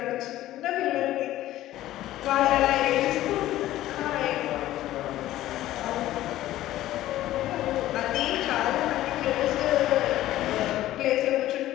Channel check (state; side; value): quieter; right; 14.6 dB